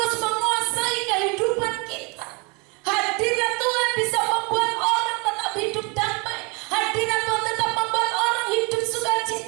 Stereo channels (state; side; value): quieter; left; 30.2 dB